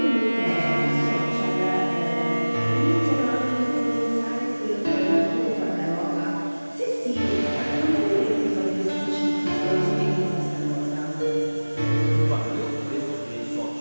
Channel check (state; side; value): inverted; both; correlation -1.00